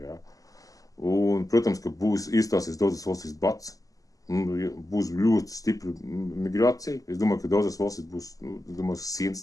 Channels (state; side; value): late; right; 0.17 ms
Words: jā. Un, protams, ka iestāsies daudzas valstīs bats. Būs ļoti stipra migrācija. Es domāju, ka daudzas valstīs būs, sienas